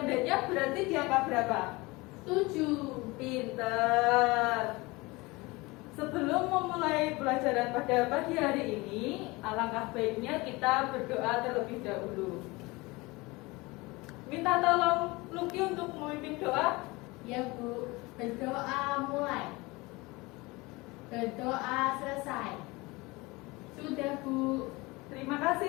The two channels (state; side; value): quieter; right; 23.3 dB